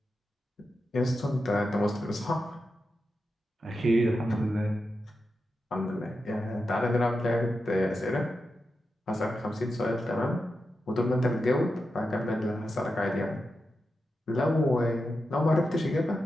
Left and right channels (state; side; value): normal; both; correlation 0.89